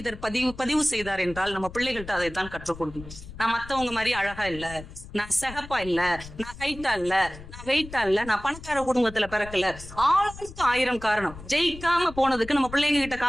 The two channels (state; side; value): noise; left; rumble, 15 dB below the sound